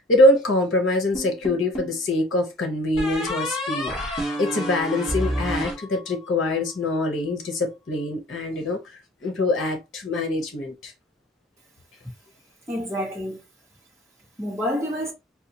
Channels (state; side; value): normal; both; correlation 0.48